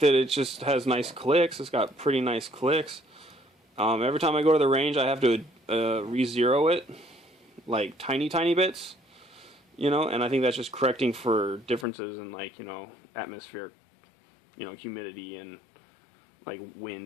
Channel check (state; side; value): drops out; right; at 11.9 s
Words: it just has nice clicks. It's got pretty nice clicks. Every time I go to the range, I have to re-zero it, like tiny bits, you know, and I think that's just correcting for differences in, like, you know, atmospheric, you know, humidity and like